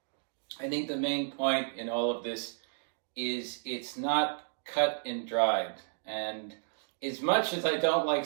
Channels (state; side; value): silent; left; digital silence